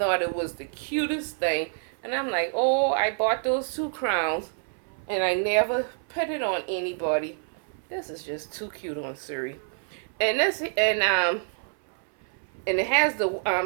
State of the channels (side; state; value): left; silent; 60 dB below the other